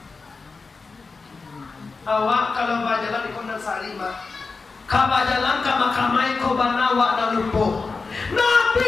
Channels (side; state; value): right; quieter; 4.3 dB